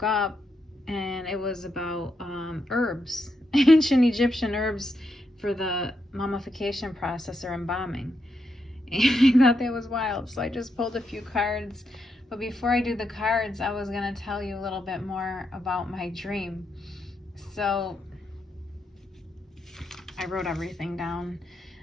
up, and it was about herbs, ancient Egyptian herbs for the mummification process or embalming. And I thought that was wild. So I just pulled a few cards. But before I do the cards, I was going to tell you a little bit more about my dream. So I wrote everything down.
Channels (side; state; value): both; normal; correlation 0.82